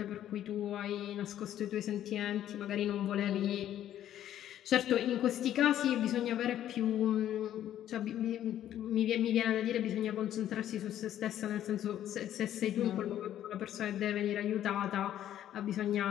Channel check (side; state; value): right; quieter; 11.5 dB